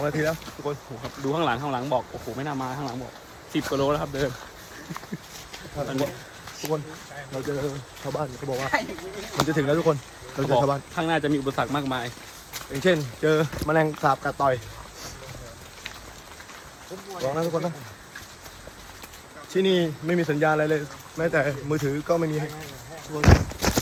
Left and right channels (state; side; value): identical; both; correlation 1.00